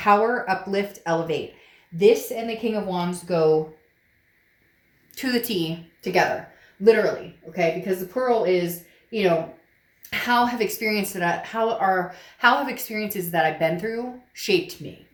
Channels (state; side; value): identical; both; correlation 1.00